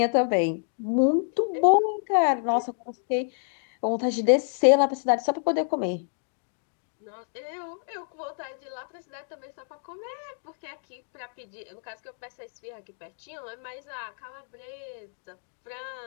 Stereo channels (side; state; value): right; silent; digital silence